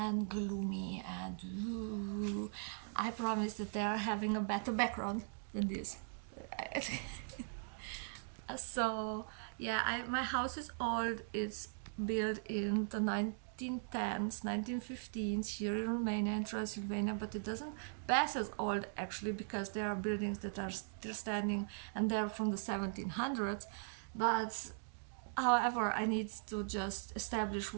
gloomy, and I promise that they are having a better background than this. So yeah, my house is old. It's built in the 1910s, 1915s here in Romania and Transylvania, but it doesn't pass as old actually, because there are buildings that are still standing and they're from the 1700s. But however, I need to just establish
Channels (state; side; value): silent; left; digital silence